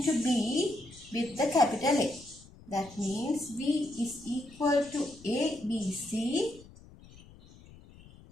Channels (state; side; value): noise; left; rumble, 22 dB below the sound